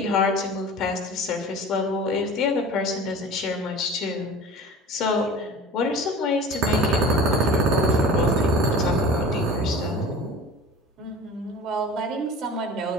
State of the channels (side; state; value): both; normal; correlation 0.39